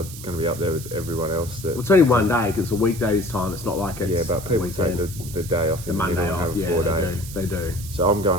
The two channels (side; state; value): right; noise; hiss, 13 dB below the sound